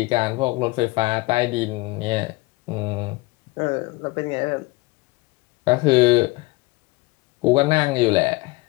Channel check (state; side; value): quieter; right; 22.7 dB